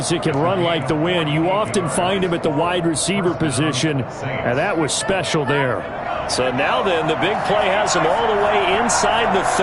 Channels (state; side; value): identical; both; correlation 1.00